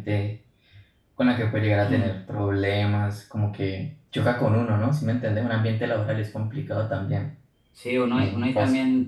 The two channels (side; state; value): both; identical; correlation 1.00